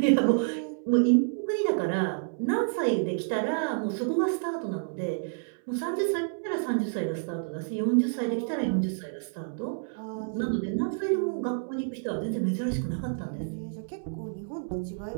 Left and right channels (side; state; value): left; silent; 59 dB below the other